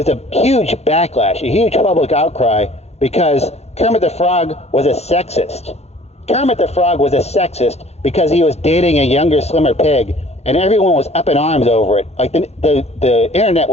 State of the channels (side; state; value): right; late; 0.31 ms